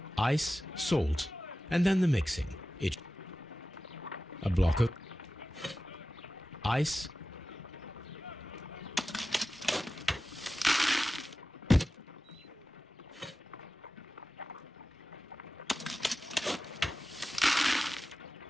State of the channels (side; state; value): both; normal; correlation 0.94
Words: Ice, salt, and then the mixing. A block of ice.